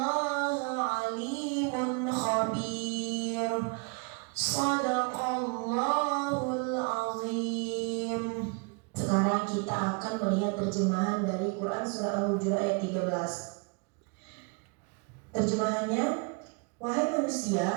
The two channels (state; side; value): quieter; left; 33.8 dB